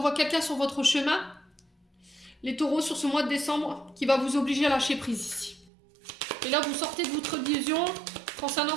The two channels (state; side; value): drops out; left; at 5.7 s